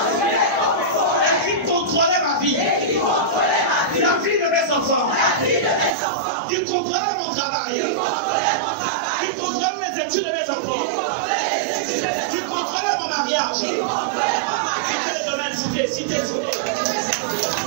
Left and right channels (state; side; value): drops out; left; at 6.0 s